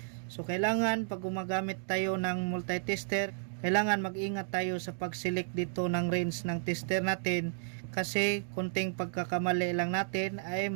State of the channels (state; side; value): silent; left; 56 dB below the other